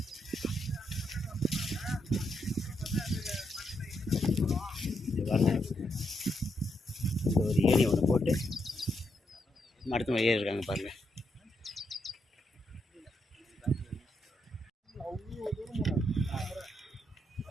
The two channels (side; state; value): both; normal; correlation 0.80